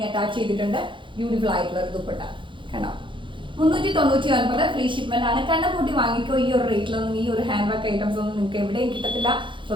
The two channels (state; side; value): late; left; 0.24 ms